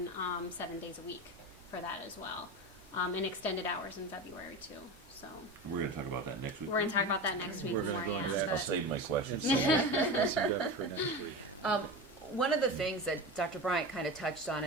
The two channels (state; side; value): normal; both; correlation 0.25